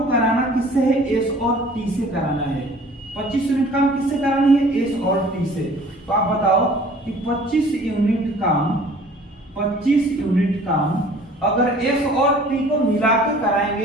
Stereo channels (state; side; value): normal; both; correlation 0.50